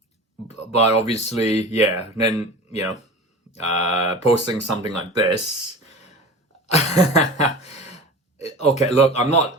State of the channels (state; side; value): normal; both; correlation 0.35